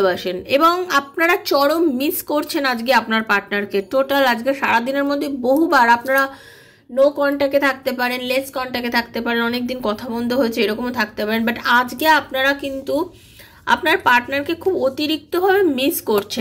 এবং আপনারা চরম মিস করছেন আজকে আপনার পার্টনারকে। টোটাল আজকে সারাদিনের মধ্যে বহুবার আপনারা নো কন্ট্যাক্টে থাকতে পারেন, লেস কন্ট্যাক্টে থাকতে পারেন, অনেকদিন কথা বন্ধ হয়েছে এরকমও থাকতে পারেন, বাট আজকে আপনারা কিন্তু আপনার পার্টনারকে খুব অতিরিক্তভাবে মিস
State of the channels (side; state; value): both; identical; correlation 1.00